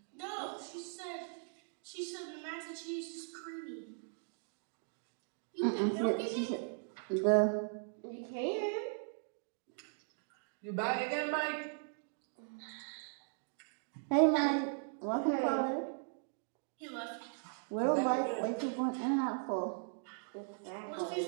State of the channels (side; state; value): left; silent; digital silence